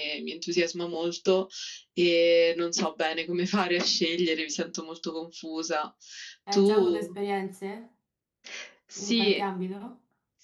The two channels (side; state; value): both; identical; correlation 1.00